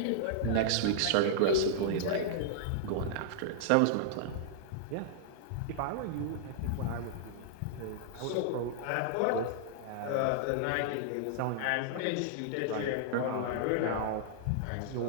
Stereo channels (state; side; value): different; both; correlation -0.01